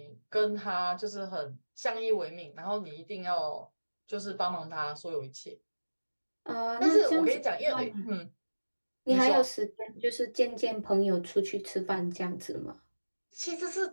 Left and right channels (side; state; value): both; inverted; correlation -1.00